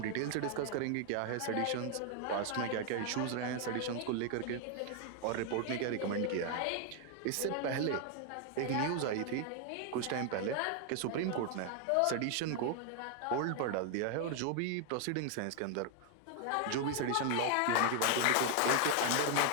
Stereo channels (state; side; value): different; both; correlation 0.00